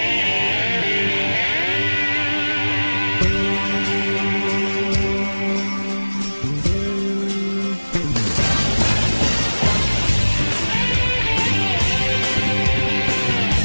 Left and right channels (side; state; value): both; inverted; correlation -1.00